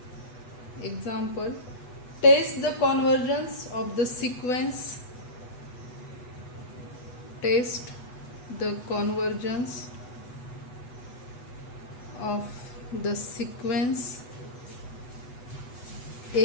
Example, test the convergence of the sequence. Test the convergence of the sequence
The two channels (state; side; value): late; right; 8.1 ms